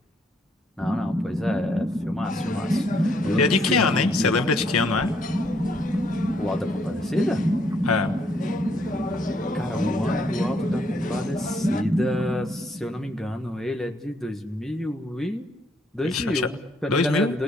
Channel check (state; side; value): normal; both; correlation 0.69